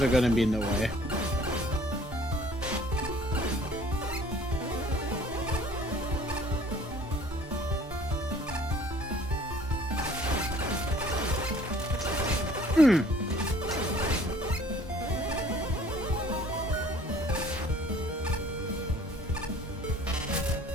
are gonna be in the way.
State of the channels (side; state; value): both; normal; correlation 0.54